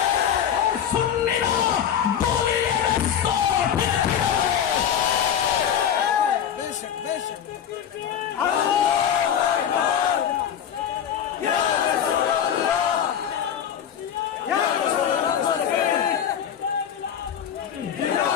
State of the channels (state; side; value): quieter; right; 9.0 dB